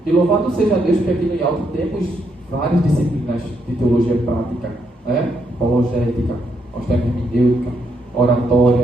E louvado seja Deus que aqui no IALT temos várias disciplinas de teologia prática, né? Apologética, nós temos hermenêutica,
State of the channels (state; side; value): normal; both; correlation 0.77